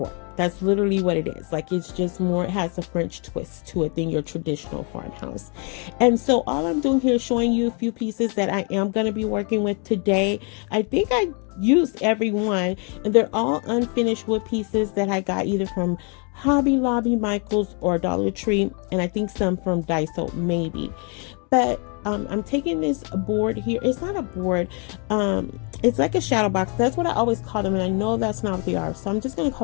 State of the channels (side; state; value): right; quieter; 36.5 dB